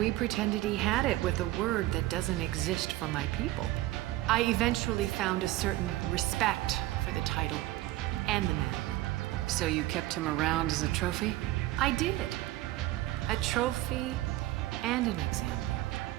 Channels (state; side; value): quieter; left; 16.6 dB